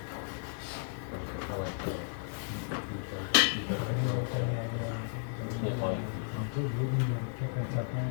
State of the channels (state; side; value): silent; right; 55 dB below the other